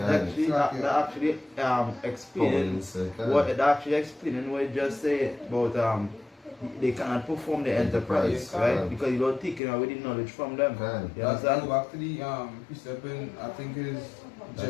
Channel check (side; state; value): right; drops out; at 9.6 s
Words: Yeah. actually explaining what it just said about they cannot perform the enterprise, Enterprise, right? Because you don't take away the knowledge from them. Can. You Let's understand? go back to the precept in, I think it is